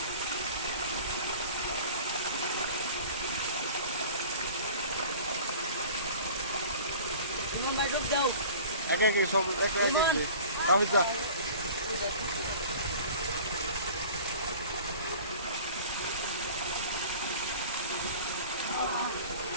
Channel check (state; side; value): inverted; both; correlation -0.42